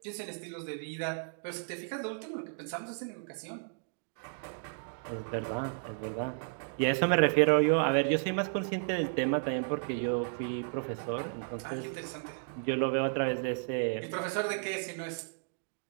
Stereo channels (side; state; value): left; silent; digital silence